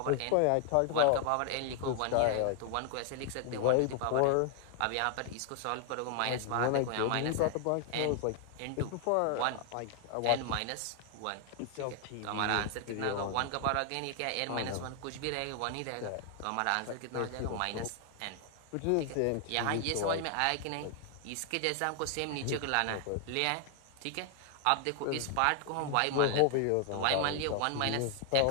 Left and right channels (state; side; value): different; both; correlation 0.00